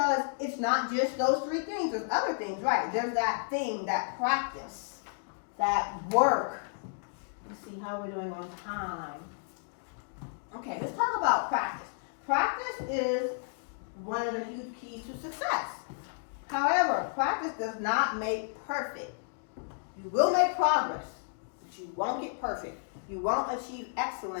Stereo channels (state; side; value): silent; right; digital silence